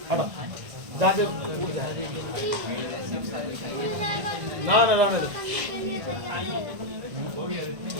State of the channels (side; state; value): left; late; 1.5 ms